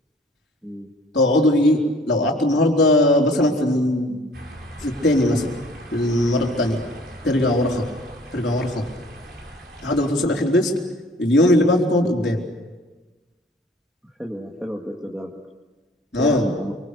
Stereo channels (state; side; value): normal; both; correlation 0.53